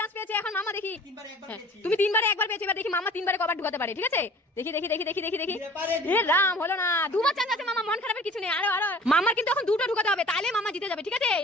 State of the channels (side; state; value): both; normal; correlation 0.46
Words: পেয়েছে, এখন মামা দেখি। তুমি 3 বারে একবার পেয়েছো, এবার দেখি মামা 3 বারে কবার ঢুকাতে পারে, ঠিক আছে? দেখি এ রাম, হলো না। 2 বার চান্স আছে মামা, মন খারাপের কিছু নেই। আরো মামার কিন্তু এখন 2টো ঢুকাতে হবে, তাহলে মামা জিতে যাবে, ঠিক আছে?